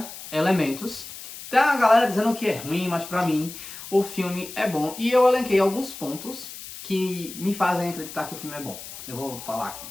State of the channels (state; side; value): noise; left; hiss, 13 dB below the sound